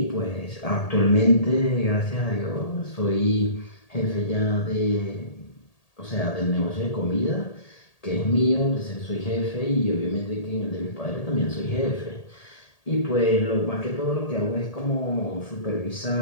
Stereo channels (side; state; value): right; late; 1.8 ms